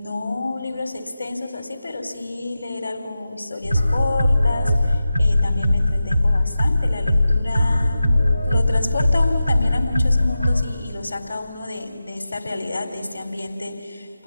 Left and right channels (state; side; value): inverted; both; correlation -0.93